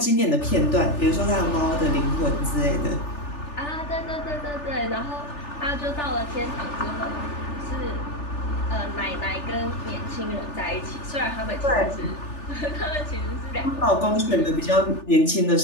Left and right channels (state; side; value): late; right; 3.4 ms